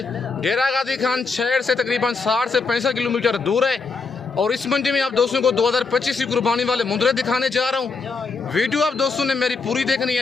जेरागादी खान शहर से तकरीबन 60 से 65 किलोमीटर दूर है और इस मंडी में आप दोस्तों को 2025 की कुर्बानी वाले मुंद्रे दिखाने जा रहा हूँ। वीडियो आप दोस्तों ने मेरी पूरी देखनी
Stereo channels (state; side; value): quieter; right; 4.4 dB